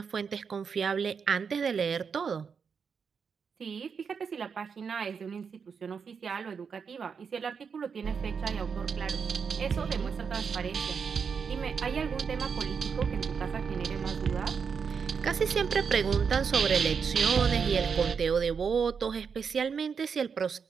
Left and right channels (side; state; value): left; quieter; 6.2 dB